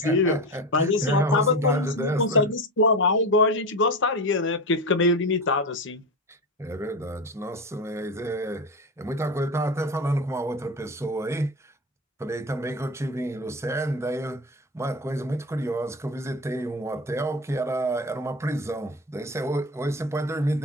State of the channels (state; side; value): normal; both; correlation 0.22